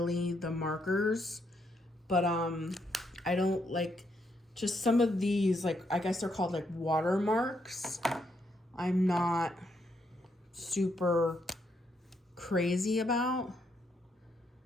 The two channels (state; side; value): normal; both; correlation 0.77